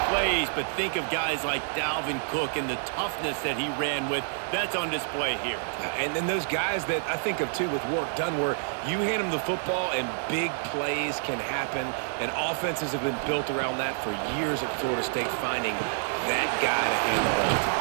plays, but think of guys like Dalvin Cook and the toughness that he ran with. That's on display here. And then those guys that I think of, too, with work done, where you hand them the football and big plays can happen, and offenses have been built around that for years at Florida State, finding that guy to hand the ball to.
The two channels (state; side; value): silent; left; digital silence